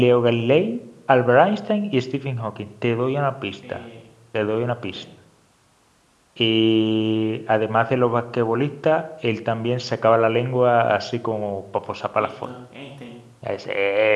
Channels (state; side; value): identical; both; correlation 1.00